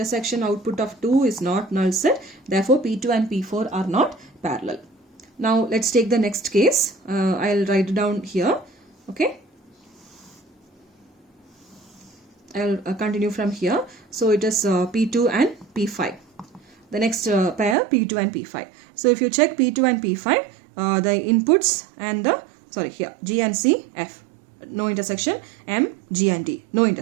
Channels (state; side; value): drops out; left; at 17.8 s